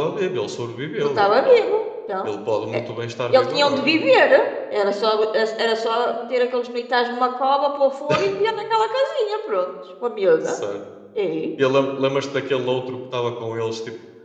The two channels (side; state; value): both; identical; correlation 1.00